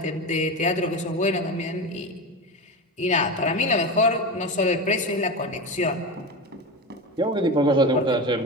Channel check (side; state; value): both; normal; correlation 0.23